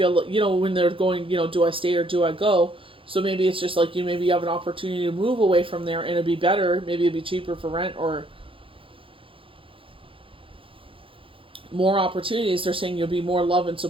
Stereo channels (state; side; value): late; left; 0.26 ms